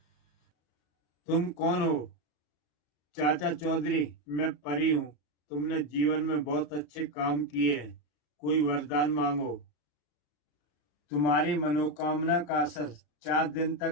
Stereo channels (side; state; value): right; late; 34 ms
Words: तुम कौन हो? चाचा चौधरी, मैं परी हूँ। तुमने जीवन में बहुत अच्छे काम किए हैं। कोई वरदान मांगो। तुम्हारी मनोकामना का असर 4 दिन